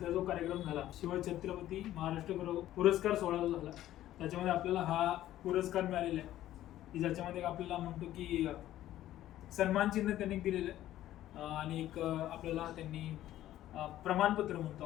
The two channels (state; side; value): quieter; right; 13.4 dB